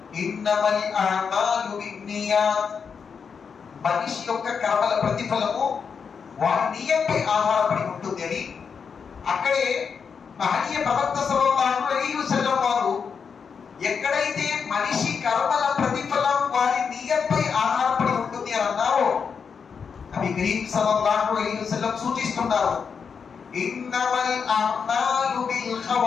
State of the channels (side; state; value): right; quieter; 6.2 dB